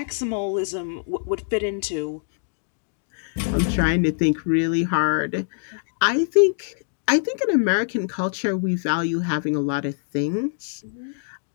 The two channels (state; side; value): silent; right; digital silence